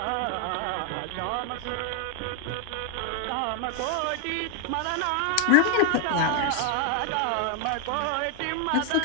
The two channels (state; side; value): different; both; correlation 0.00